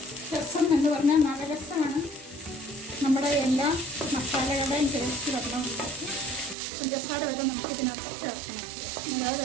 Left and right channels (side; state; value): left; drops out; at 6.6 s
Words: രസം എന്ന് പറഞ്ഞാൽ നല്ല രസമാണ്. നമ്മുടെ എല്ലാ മസാലകളുടെയും ടേസ്റ്റ് വരണമുണ്ടാക്കി പഞ്ചസാര വരെ നമുക്ക് ഇതിനകത്ത് ചേർക്കണം. നല്ല